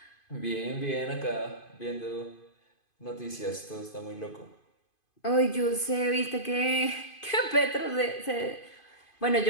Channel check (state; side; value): late; right; 2.5 ms